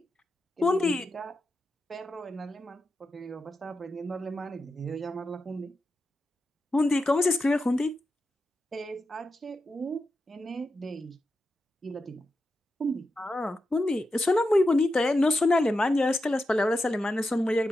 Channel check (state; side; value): normal; both; correlation 0.88